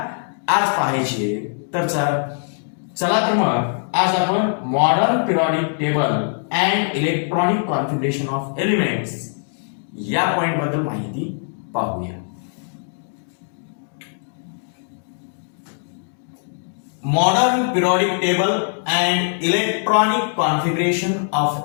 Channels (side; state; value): right; silent; digital silence